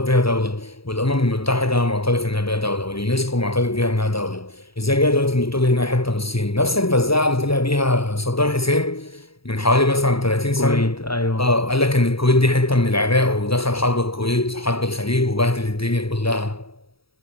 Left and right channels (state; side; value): late; right; 0.76 ms